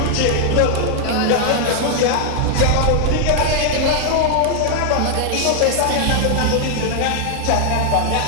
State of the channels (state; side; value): different; both; correlation 0.00